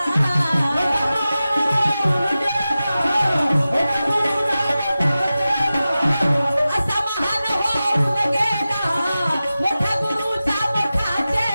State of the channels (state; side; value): inverted; both; correlation -0.94